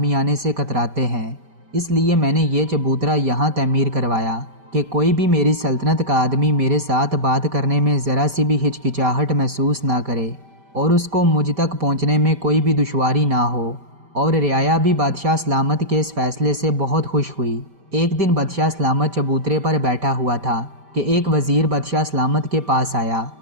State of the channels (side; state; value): left; late; 5.1 ms